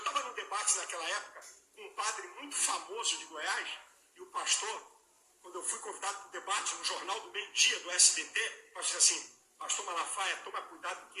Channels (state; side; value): identical; both; correlation 1.00